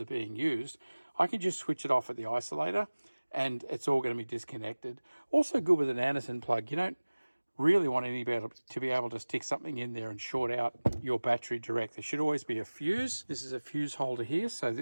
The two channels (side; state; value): both; inverted; correlation -1.00